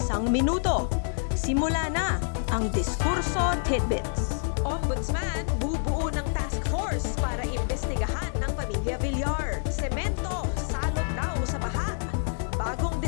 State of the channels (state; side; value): silent; right; digital silence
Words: minuto. Simula na ang Diskurso Tidbits. Ombudsman bubuo ng task force para imbestigahan ng pamilya Villar. Semento, salot daw sa baha. Bagong